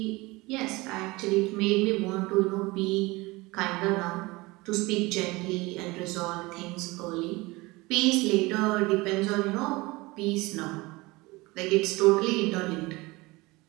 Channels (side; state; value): left; quieter; 22.4 dB